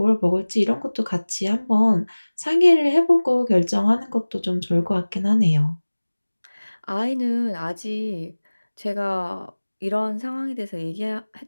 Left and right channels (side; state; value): both; inverted; correlation -1.00